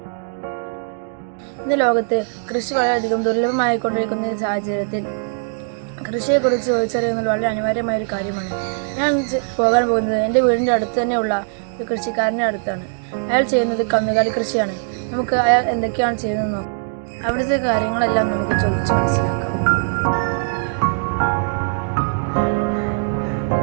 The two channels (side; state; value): left; silent; digital silence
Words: ഇന്ന് ലോകത്ത് കൃഷി വളരെയധികം ദുർലഭമായിക്കൊണ്ടിരിക്കുന്ന ഈ സാഹചര്യത്തിൽ കൃഷിയെക്കുറിച്ച് ചോദിച്ചറിയുന്നത് വളരെ അനിവാര്യമായ ഒരു കാര്യമാണ്. ഞാൻ പോകാൻ പോകുന്നത് എൻ്റെ വീടിൻ്റെ അടുത്ത് തന്നെയുള്ള ഒരു കൃഷിക്കാരൻ്റെ അടുത്താണ്. അയാൾ ചെയ്യുന്നത് കന്നുകാലി കൃഷിയാണ്. നമുക്ക് അയാൾ എന്തൊക്കെയാണ് ചെയ്യുന്നത് നോക്കാം. അവിടുത്തെ കാര്യങ്ങളെല്ലാം നമുക്ക് ചോദിച്ച് മനസ്സിലാക്കാം.